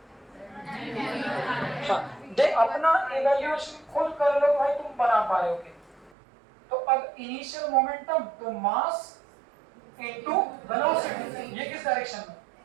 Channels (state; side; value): drops out; left; at 6.1 s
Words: हाँ, दे अपना इवैल्यूएशन खुद कर लो भाई, तुम बना पाओगे। तो अब इनिशियल मोमेंटम तो मास इनटू वेलोसिटी, ये किस डायरेक्शन में,